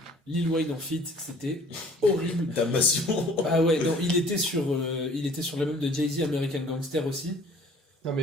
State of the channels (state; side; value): normal; both; correlation 0.52